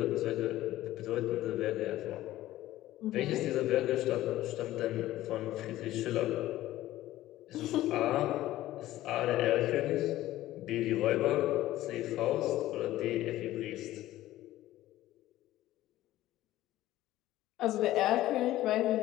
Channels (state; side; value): quieter; right; 15.1 dB